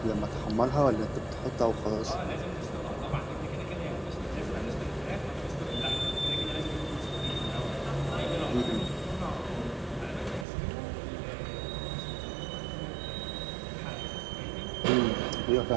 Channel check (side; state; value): left; drops out; at 10.5 s